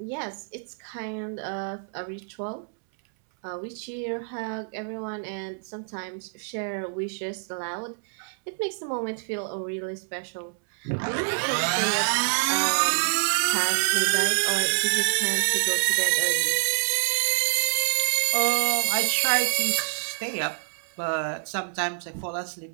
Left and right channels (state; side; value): silent; left; 60 dB below the other